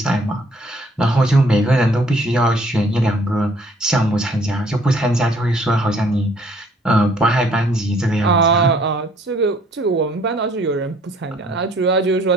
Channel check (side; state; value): both; normal; correlation 0.61